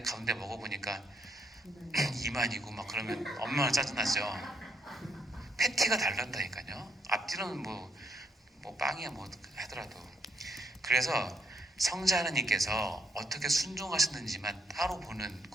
가운데 먹어보니까 이만이고 막 그러면 얼마나 짜증나죠. 패티가 다른다니까요. 앞뒤로는 뭐 빵이야 뭐 하더라도. 그래서 성자 하나님께서 어떻게 순종하셨는지만 따로 보는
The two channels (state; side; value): normal; both; correlation 0.75